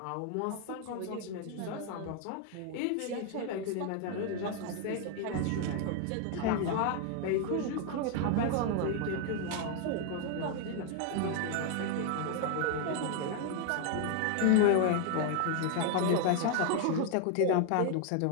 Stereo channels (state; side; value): different; both; correlation 0.00